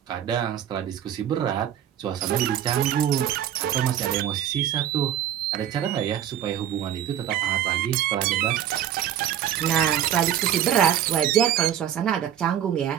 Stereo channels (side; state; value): left; quieter; 10.5 dB